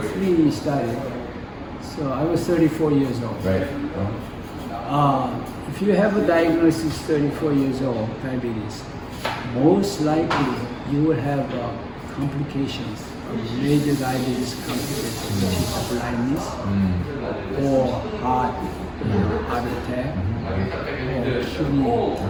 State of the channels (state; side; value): identical; both; correlation 1.00